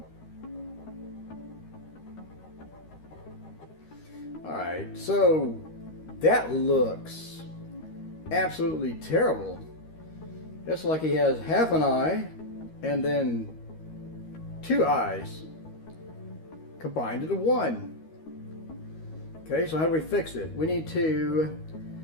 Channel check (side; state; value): right; late; 13 ms